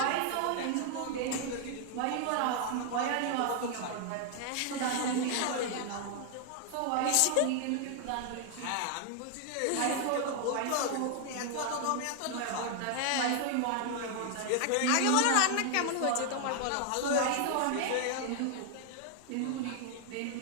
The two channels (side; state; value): both; different; correlation 0.00